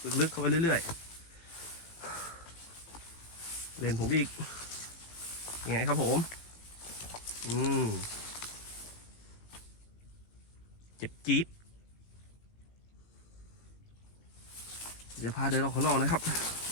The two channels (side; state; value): right; late; 18 ms